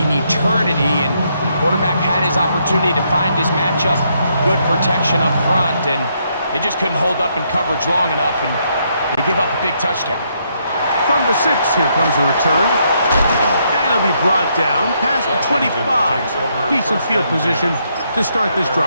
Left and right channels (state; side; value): inverted; both; correlation -0.75